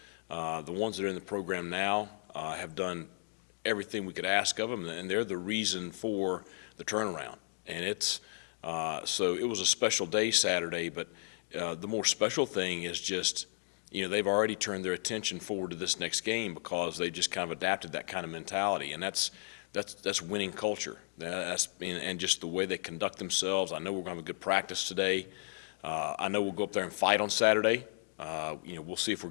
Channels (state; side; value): silent; right; digital silence